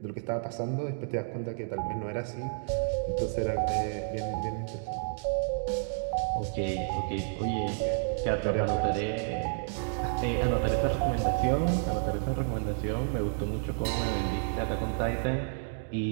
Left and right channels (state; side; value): silent; left; digital silence